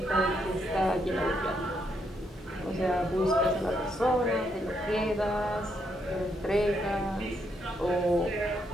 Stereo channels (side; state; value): both; normal; correlation 0.77